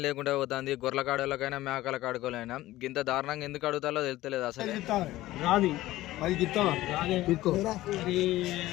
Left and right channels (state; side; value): quieter; right; 16.4 dB